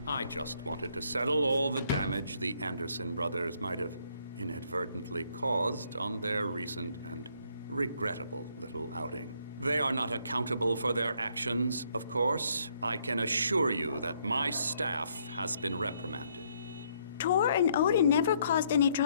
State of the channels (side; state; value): both; inverted; correlation -0.69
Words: I just wanted to settle all the damage the Anderson brothers might have inadvertently caused on their recent and regrettable little outing. They are not accountable for their actions, of course. I can assure you that my staff has been reprimanded. Tor and Odin never caused any